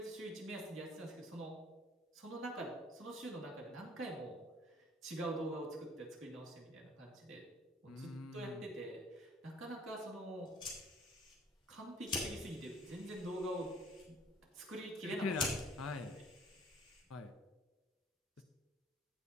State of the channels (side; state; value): both; normal; correlation 0.55